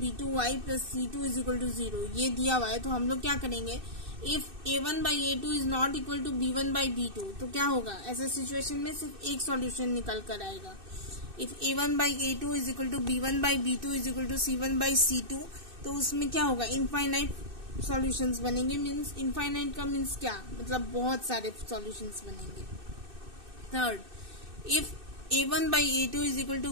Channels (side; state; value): left; late; 2.6 ms